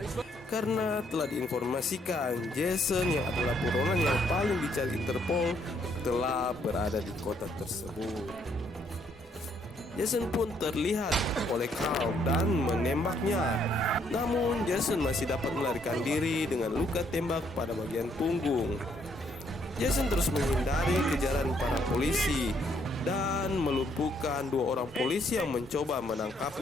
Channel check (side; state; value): both; normal; correlation 0.70